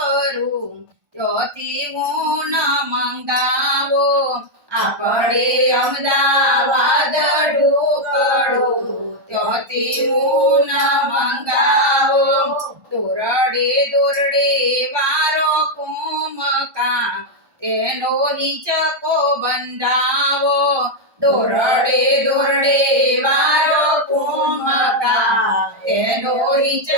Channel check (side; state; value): left; late; 1.3 ms